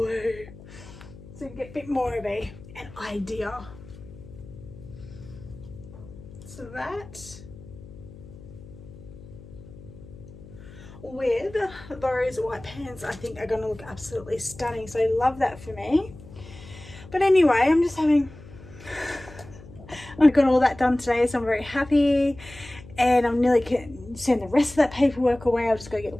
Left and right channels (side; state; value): left; noise; hum, 18 dB below the sound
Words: So you get a bit more of an idea. So that with those white pants I think are going to look absolutely stunning. So I love that for me. But anyway, I'm just having... I've got all that done today, so I'm very happy. And I'm nearly going to send the rest of that paperwork away. I've just got to get